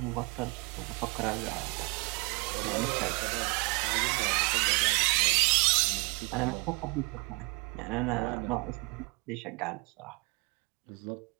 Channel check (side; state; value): left; quieter; 29.8 dB